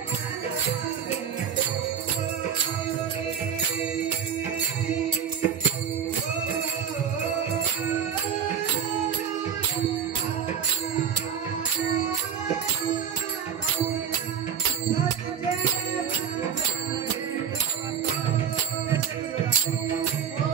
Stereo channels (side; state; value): left; quieter; 7.9 dB